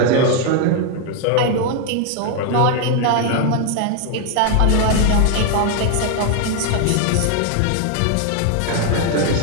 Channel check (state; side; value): different; both; correlation 0.01